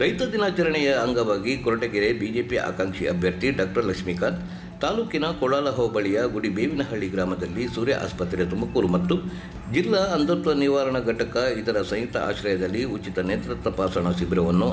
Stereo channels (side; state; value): both; identical; correlation 1.00